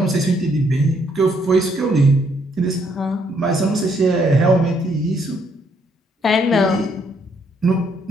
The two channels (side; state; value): both; normal; correlation 0.71